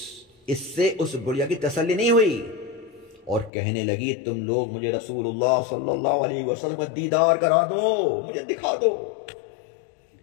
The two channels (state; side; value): drops out; right; at 3.5 s